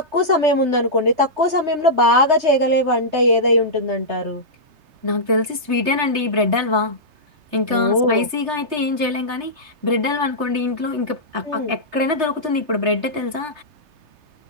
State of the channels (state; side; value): late; left; 3.3 ms